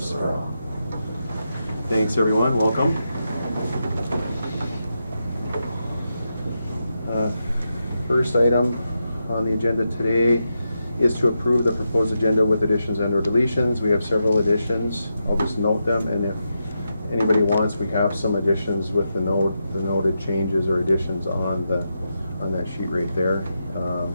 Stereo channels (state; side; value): inverted; both; correlation -0.86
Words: for all. Thanks everyone, welcome. First item on the agenda today is to approve the proposed agenda with additions and or deletions. We have several additions. I'll just note them, and if anybody wants, we have some additions with the noted changes or additions on that sheet right there.